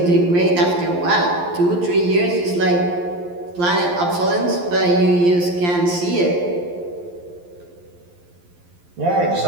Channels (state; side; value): late; left; 11 ms